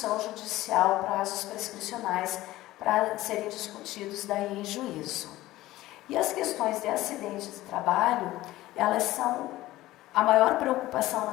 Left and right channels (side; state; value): right; quieter; 16.6 dB